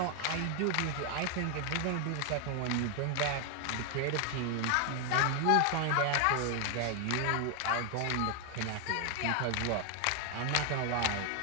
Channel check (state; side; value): different; both; correlation 0.00